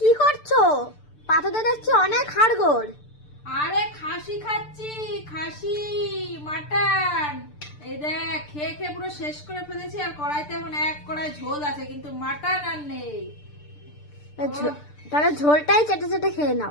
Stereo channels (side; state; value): right; late; 6.8 ms